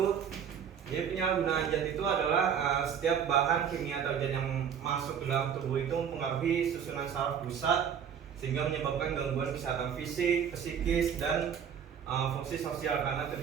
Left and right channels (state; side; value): quieter; left; 8.0 dB